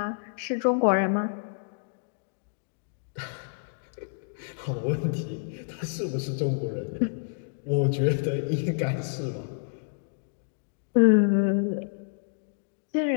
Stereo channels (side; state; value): right; silent; digital silence